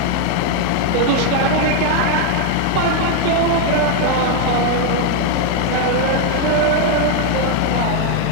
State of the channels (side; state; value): both; different; correlation 0.01